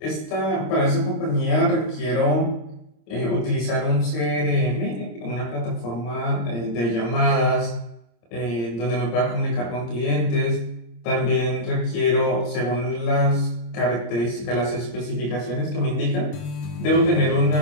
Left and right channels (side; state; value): right; late; 26 ms